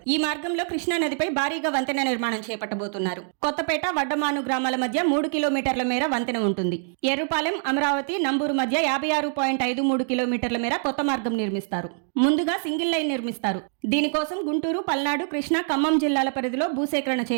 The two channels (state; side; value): silent; left; 62 dB below the other